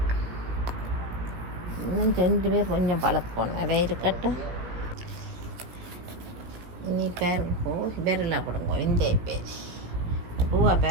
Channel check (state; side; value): late; left; 17 ms